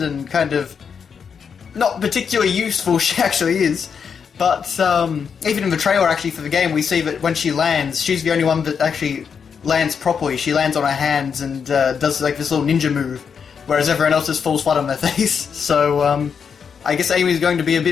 kind of not particularly useful she actually is. But even in the trailer actually for the game, we see that when she lands, she's the only one that actually lands properly. She lands on her hands and does like this little ninja move, whereas everyone else just falls flat on their face. So I guess Amy's going to be a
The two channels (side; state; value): right; quieter; 6.6 dB